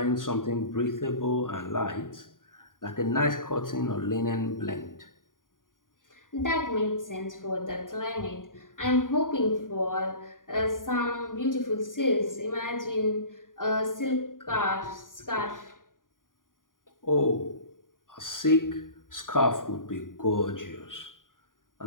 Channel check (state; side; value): late; right; 0.89 ms